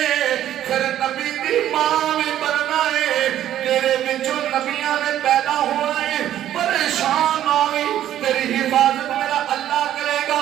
پھر نبی دی ماں بھی بننا ہے تیرے بچوں نبیاں نے پیدا ہونا ہے پریشان نہ ہوئی تیری حفاظت میرا اللہ کرے گا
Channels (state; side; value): quieter; left; 11.8 dB